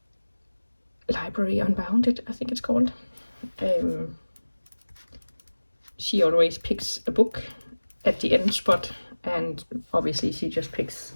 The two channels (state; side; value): inverted; both; correlation -1.00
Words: Library Unbounded, I think it's called. She always picks a book at the end spot, and obviously she just picks